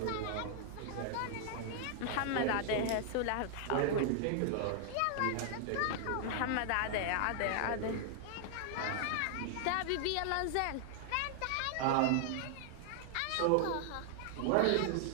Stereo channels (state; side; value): different; both; correlation 0.00